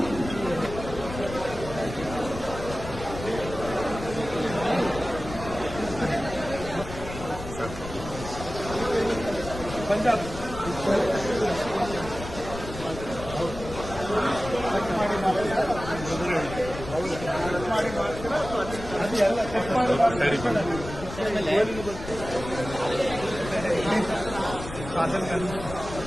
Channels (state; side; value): noise; left; rumble, 10 dB below the sound